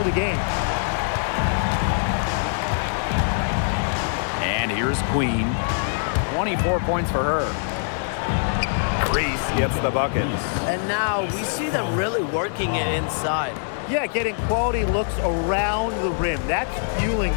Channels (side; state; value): right; silent; digital silence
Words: the game. And here's Queen. 24 points for her. Reese gets the bucket. And now we see them really working it inside. Yeah, getting quality looks around the rim. That's fueling